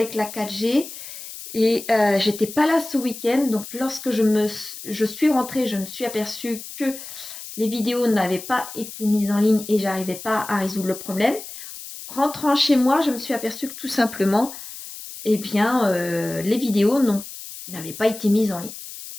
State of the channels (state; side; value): noise; left; hiss, 12 dB below the sound